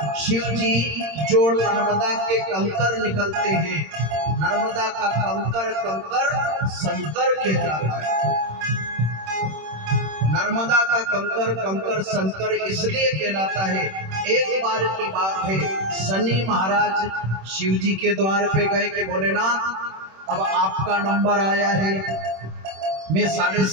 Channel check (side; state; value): left; late; 26 ms